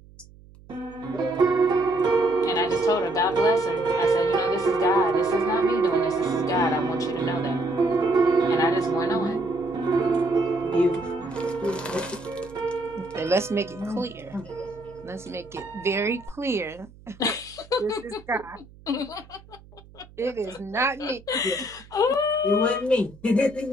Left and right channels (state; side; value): noise; right; hum, 23 dB below the sound